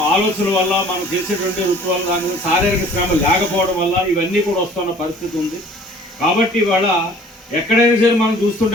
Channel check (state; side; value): normal; both; correlation 0.51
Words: ఆలోచన వల్ల మనం చేసేటువంటి వృత్తి వల్ల దాని మీద శారీరక శ్రమ లేకపోవడం వల్ల ఇవన్నీ కూడా వస్తున్న పరిస్థితి ఉంది. కాబట్టి ఇవాళ ఎక్కడైనా సరే మనం